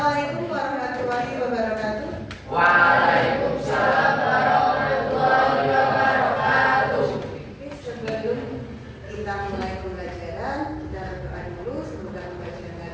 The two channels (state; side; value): identical; both; correlation 1.00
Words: warahmatullahi wabarakatuh. Waalaikumsalam warahmatullahi wabarakatuh. Oke, sebelum kita mulai pembelajaran, kita berdoa dulu. Semoga pembelajaran